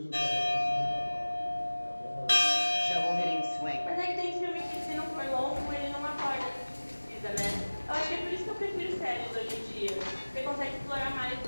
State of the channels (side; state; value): both; inverted; correlation -1.00